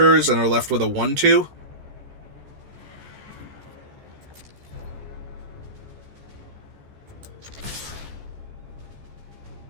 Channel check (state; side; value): late; left; 14 ms